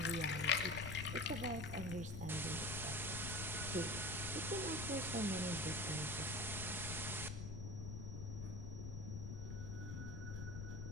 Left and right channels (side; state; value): left; noise; rumble, 5 dB below the sound